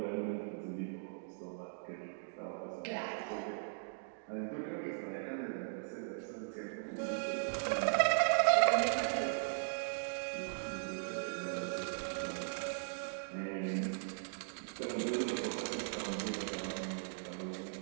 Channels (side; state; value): left; silent; digital silence